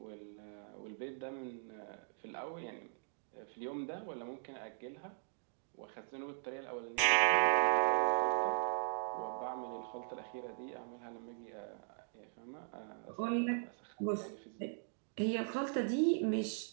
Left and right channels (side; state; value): left; silent; digital silence